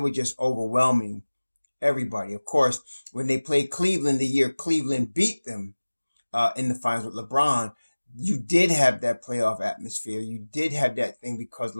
just overwhelming everybody. Of course, when they played Cleveland the year Cleveland beat them in the finals with LeBron, you did have that playoff atmosphere. You did have that thing because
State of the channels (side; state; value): both; inverted; correlation -1.00